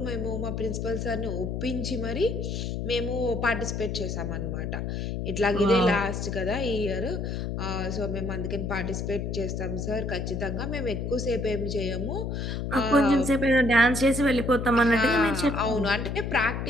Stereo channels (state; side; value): noise; left; hum, 3 dB below the sound